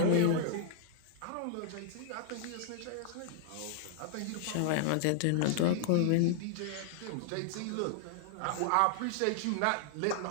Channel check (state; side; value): different; both; correlation -0.01